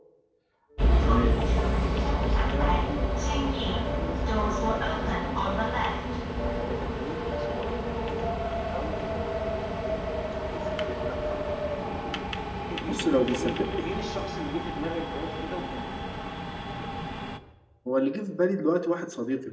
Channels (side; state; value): both; identical; correlation 1.00